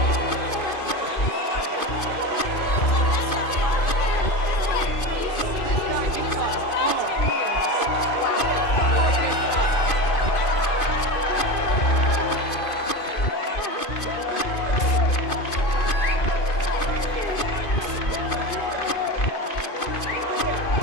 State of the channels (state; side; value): late; right; 2.5 ms